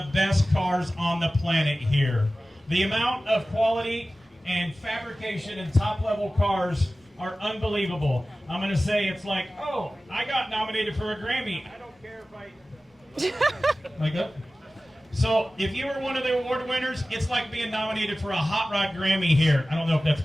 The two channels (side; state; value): both; normal; correlation 0.96